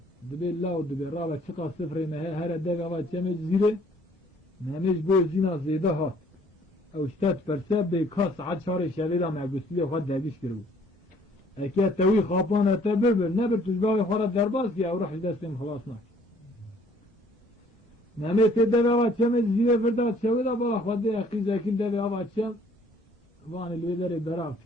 دبی لاو دبی رابا چقا سفره مهی هر دوی آوان چمی زیره ممیش بوی زینا زیدا هات او شتات پرسه بی کاس عد شار شویدا مگوستی خود دبیش کرو اکی توی خوابان اتا ببر نبر تجباوی خورد درباز که او روح دستیم خلاص ناک ممی تی دوی آوان چمی زیره فرداد شویدا بالا خود قیزا کل دوی آوان چم وان الویدر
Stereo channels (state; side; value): normal; both; correlation 0.59